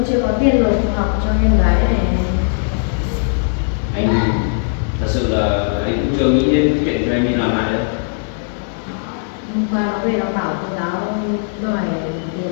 chưa có tiền nộp học cho em gái này. Anh thật sự là anh cũng chưa nghĩ đến cái chuyện cho em đi làm lại đâu. Hôm qua nó về nó bảo cô giáo đòi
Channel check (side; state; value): right; silent; digital silence